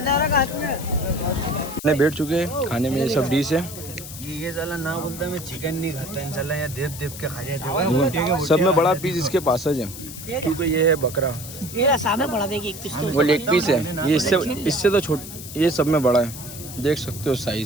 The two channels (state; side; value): noise; left; hiss, 12 dB below the sound